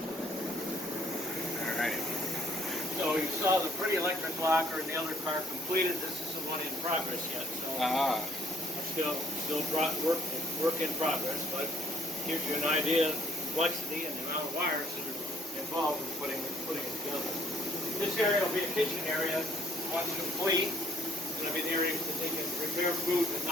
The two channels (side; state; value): both; normal; correlation 0.62